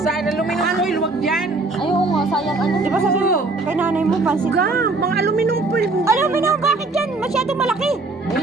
Sa aluminum foil, wag dyan. Ay, oo nga, sayang ano. Di ba sabi mo, kay nanay mo, pansit lang. Gang, mga aluminum foil. Aluminum, bakit yan? Masyadong malaki.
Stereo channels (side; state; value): left; quieter; 3.4 dB